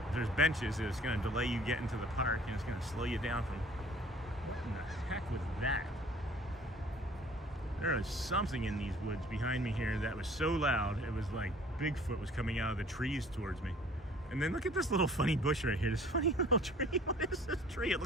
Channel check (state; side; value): normal; both; correlation 0.52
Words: there's benches, it's gonna delay you getting to the park, and it's gonna slow you down from. What in the heck was that? There was something in these woods behind me here that was so loud, it was like Bigfoot was coming out of the trees towards me. And then look at this little funny bush right here, this funny little tree. What is this tree? It